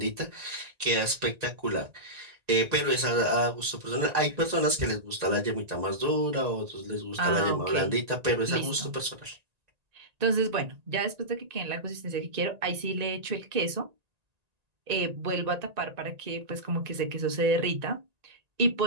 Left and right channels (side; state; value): left; late; 1.9 ms